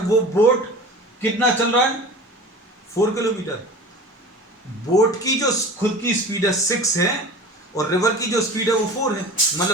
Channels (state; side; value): normal; both; correlation 0.37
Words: वो बोट कितना चल रहा है? 4 किलोमीटर। बोट की जो खुद की स्पीड है 6 है, और रिवर की जो स्पीड है वो 4 है।